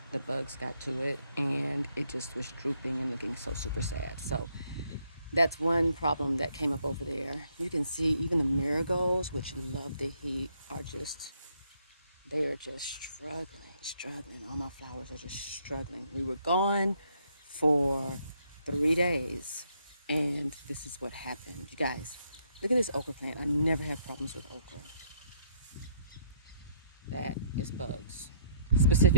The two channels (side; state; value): both; inverted; correlation -0.69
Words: the bugs got to it and it just was drooping and looking so super sad. So that's one problem that came up over there. You can see even the marigolds, which love the heat, they are just struggling. All my flowers are just struggling. We were gone for 3 days and this is what happened. You guys, look at this okra plant. I never have problems with okra. That is bugs,